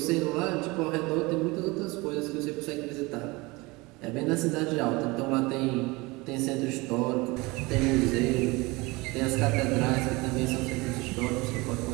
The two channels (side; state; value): left; quieter; 23.8 dB